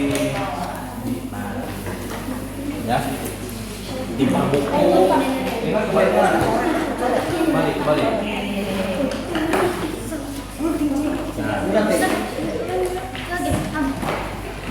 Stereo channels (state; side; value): identical; both; correlation 1.00